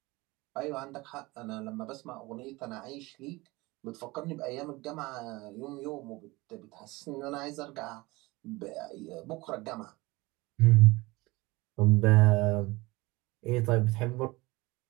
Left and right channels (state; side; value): quieter; left; 22.1 dB